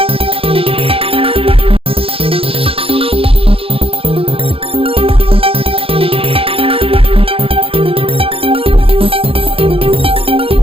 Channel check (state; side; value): late; left; 0.27 ms